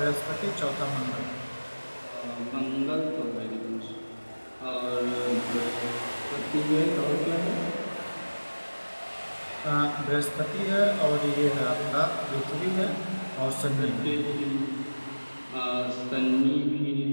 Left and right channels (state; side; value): inverted; both; correlation -1.00